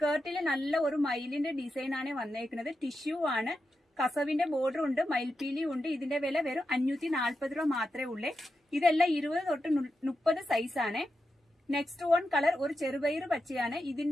നല്ല ഒരു മയിലിന്റെ ഡിസൈൻ ആണ് വന്നേക്കുന്നത്. ടിഷ്യൂ ആണ്, കസവിന്റെ ബോർഡർ ഉണ്ട്, മയിൽപീലി ഉണ്ട്. ഇതിന്റെ വില വെറും 540 രൂപ മാത്രമേ ഉള്ളേ. ഇതെല്ലാം 20 തൊട്ട് 30 സൈസ് ആണ്. നെക്സ്റ്റ് വൺ കളർ ഒരു ചെറുപയർ പച്ചയാണ്.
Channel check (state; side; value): normal; both; correlation 0.88